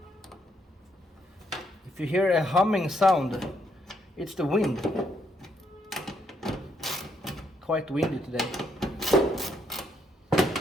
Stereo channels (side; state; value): both; normal; correlation 0.75